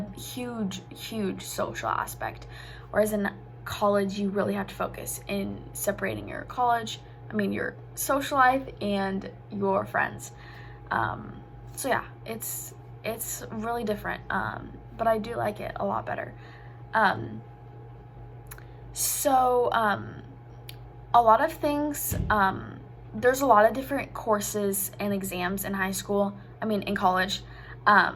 huge social aspect, whereas in college you really have to focus in separating your social life and your friends. So yeah, it's really different, but I do like it a lot better. A lot of things, there's a lot of different courses and exams in in college,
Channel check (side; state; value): both; identical; correlation 1.00